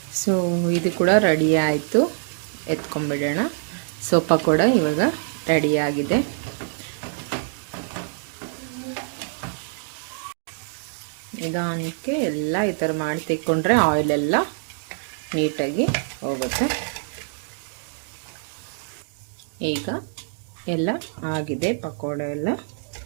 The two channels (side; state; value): left; silent; digital silence